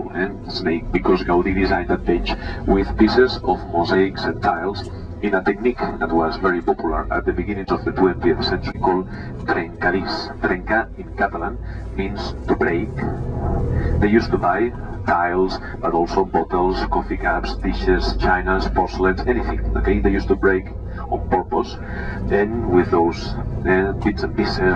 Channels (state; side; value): identical; both; correlation 1.00